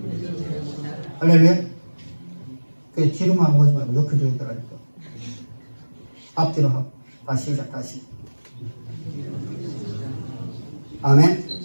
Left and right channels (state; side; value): inverted; both; correlation -1.00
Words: 할렐루야. 그 뒤로만 오지 말고 옆에 조용히더라니까. 앞뒤로 하고. 다시 시작. 다시. 아멘.